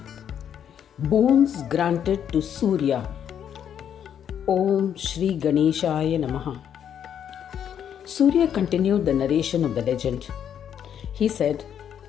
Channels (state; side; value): quieter; right; 9.0 dB